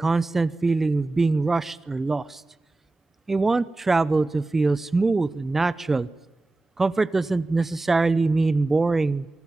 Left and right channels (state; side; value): quieter; left; 3.1 dB